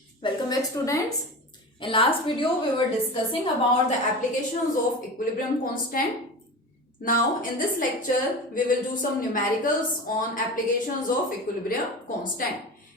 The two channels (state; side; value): normal; both; correlation 0.30